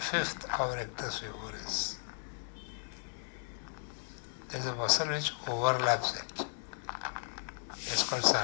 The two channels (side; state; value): right; silent; digital silence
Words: of rectus femoris, there is a muscle which overlaps it. It's called